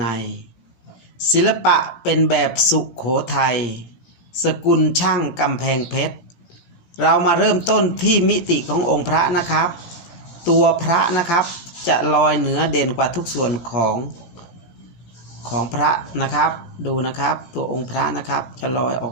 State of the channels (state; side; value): late; right; 18 ms